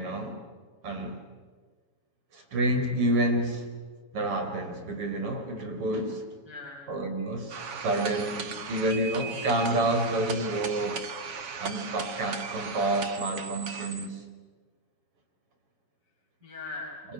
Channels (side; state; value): left; late; 7.2 ms